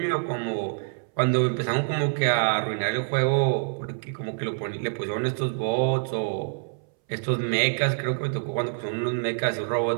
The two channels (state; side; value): silent; left; 61 dB below the other